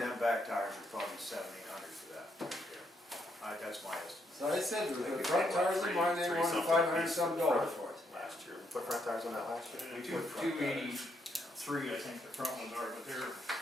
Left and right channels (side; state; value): both; normal; correlation 0.76